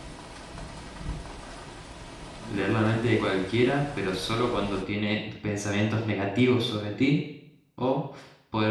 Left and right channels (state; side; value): identical; both; correlation 1.00